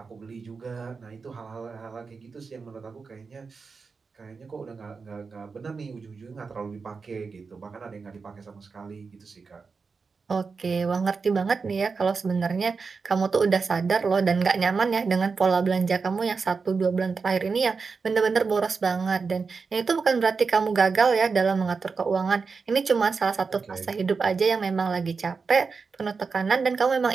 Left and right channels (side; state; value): left; quieter; 4.9 dB